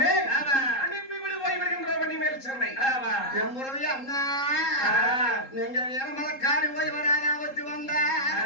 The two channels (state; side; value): late; right; 3.7 ms